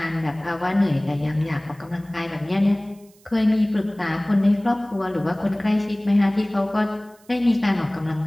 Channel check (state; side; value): noise; right; hiss, 30 dB below the sound